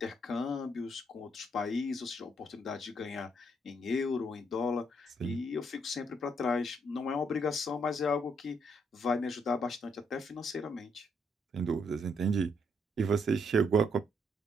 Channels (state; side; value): normal; both; correlation 0.73